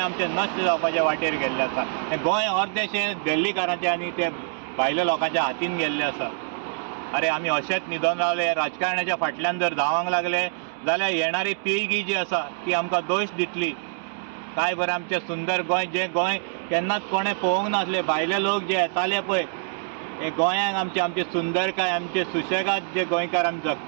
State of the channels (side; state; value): left; silent; digital silence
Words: नश्ट जावपाच्या वाटेर गेल्लें आसा। हें गोंय अर्देशें दिल्लीकारांचें आनी ते भायल्या लोकांच्या हातीन गेल्लें आसा। अरे आमी अशेंच न्हिदोन रावले, राजकारण्याच्या फाटल्यान जर धांवंक लागले जाल्यार येणारी पिळगी जी आसा ती आमकां दोश दितली। काय बरें आमचें सुंदर गोंय, जें गोंय केन्नाच कोणें पळोवंक नासलें। भायले लोक जे येताले पळय हे गोंयांक आमची सुंदरकाय, आमचे सुशेगाद जे गोंयकार आमी